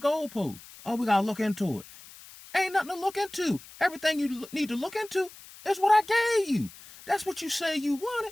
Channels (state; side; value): noise; left; hiss, 19 dB below the sound